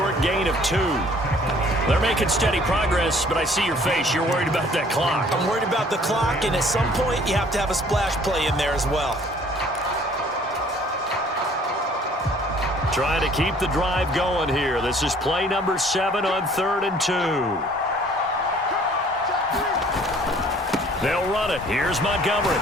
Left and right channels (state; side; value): normal; both; correlation 0.56